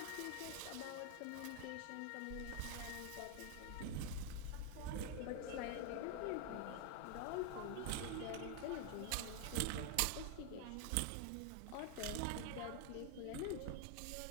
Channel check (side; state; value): both; different; correlation 0.01